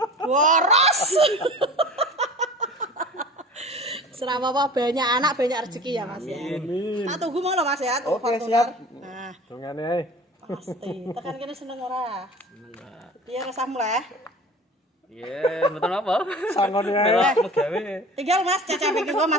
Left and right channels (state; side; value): normal; both; correlation 0.39